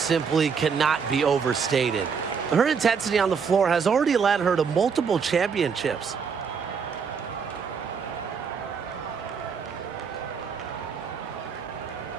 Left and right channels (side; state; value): left; quieter; 6.1 dB